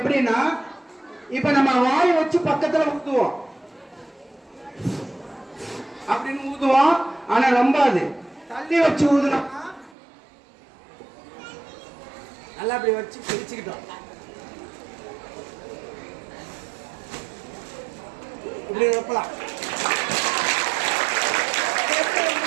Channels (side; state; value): left; drops out; at 10.0 s